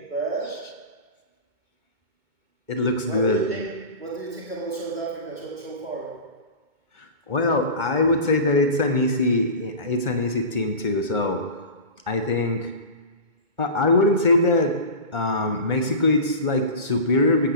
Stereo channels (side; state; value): left; late; 2.2 ms